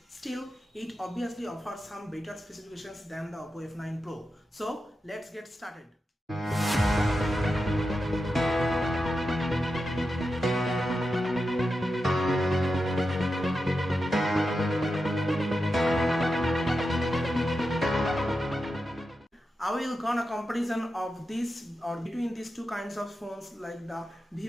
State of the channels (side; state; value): both; normal; correlation 0.89